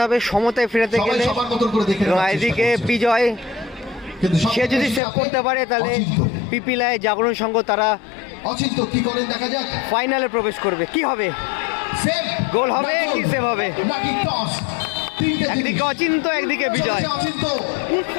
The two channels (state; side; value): drops out; right; at 5.0 s